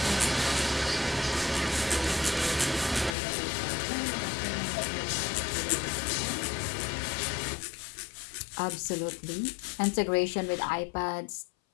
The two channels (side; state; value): right; drops out; at 3.1 s